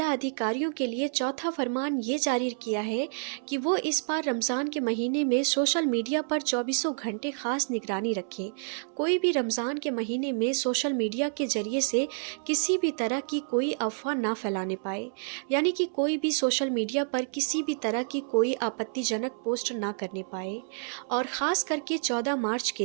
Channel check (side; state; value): left; silent; 59 dB below the other